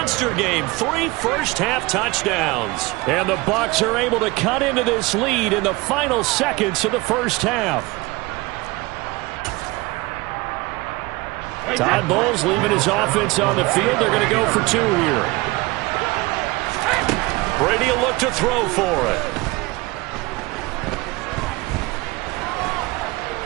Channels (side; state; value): left; quieter; 22.5 dB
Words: game. 3 first-half touchdowns. And the Bucs are able to cut into this lead in the final seconds of the first half. Todd Bowles leaving his offense on the field. They're going to go for 2 here. Brady will look to throw for it.